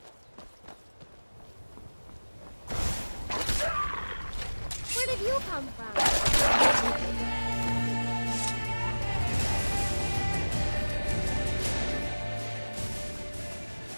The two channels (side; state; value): both; inverted; correlation -1.00